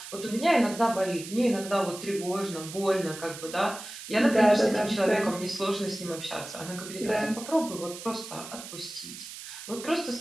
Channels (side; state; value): right; noise; hiss, 12 dB below the sound